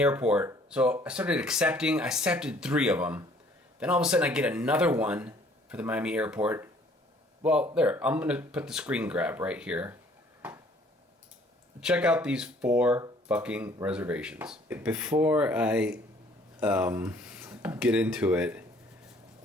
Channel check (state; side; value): normal; both; correlation 0.58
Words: So I started accepting. I accepted 3 of them. Then all of a sudden I get another one for the Miami airport. Well, there, I'm gonna put the screen grab right here. Check out these 4 fucking reservations. Before I get into it,